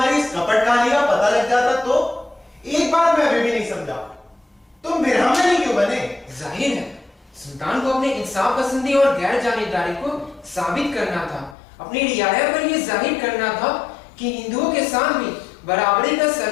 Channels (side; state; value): right; drops out; at 11.6 s